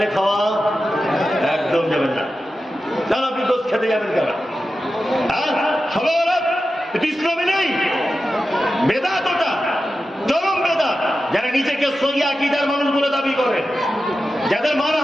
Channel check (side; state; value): both; normal; correlation 0.92